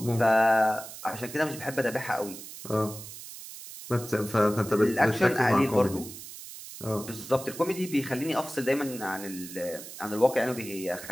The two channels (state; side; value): noise; right; hiss, 13 dB below the sound